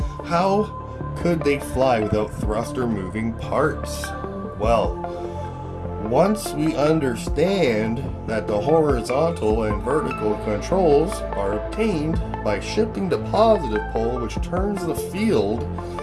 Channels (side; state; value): both; identical; correlation 1.00